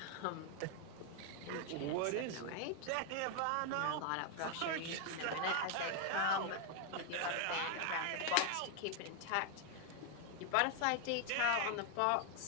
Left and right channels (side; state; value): both; different; correlation 0.00